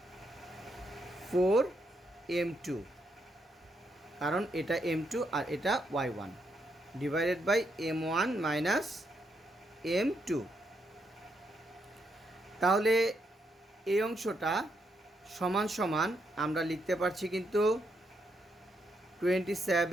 4M2, কারণ এটা M2 আর এটা y1 divided by M1 minus M2। তাহলে এই অংশটা সমান সমান আমরা লিখতে পারছি কিন্তু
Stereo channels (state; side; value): normal; both; correlation 0.79